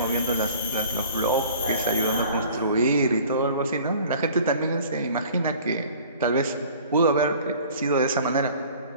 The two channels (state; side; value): inverted; both; correlation -0.48